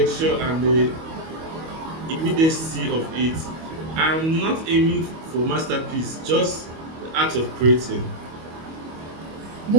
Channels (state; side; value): late; left; 25 ms